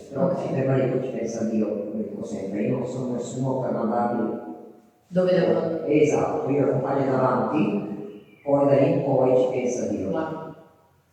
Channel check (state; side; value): identical; both; correlation 1.00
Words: Però ci ferma lì, ci pensa Dio, come dico sempre. Io non sono nessuno per mandarli. Dove devo andare? Esatto, io lo accompagno davanti, poi da lì in poi ci pensa Dio. Guarda.